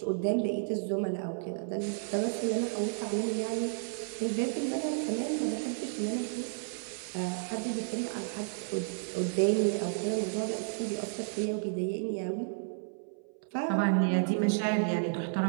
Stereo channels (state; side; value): silent; left; 56 dB below the other